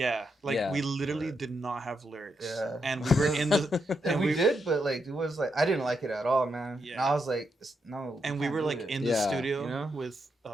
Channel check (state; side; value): normal; both; correlation 0.82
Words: We literally did not have lyrics, and we were in the and we did, but like it was like I didn't like it at all, man. And I was like, no. And we were like in the studio with